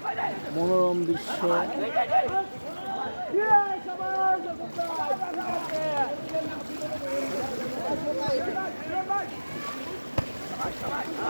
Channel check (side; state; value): both; inverted; correlation -1.00